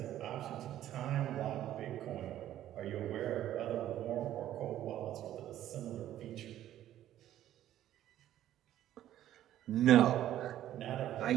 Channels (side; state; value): left; quieter; 12.4 dB